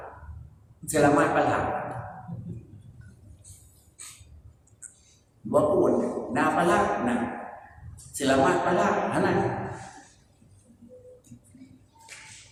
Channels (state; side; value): identical; both; correlation 1.00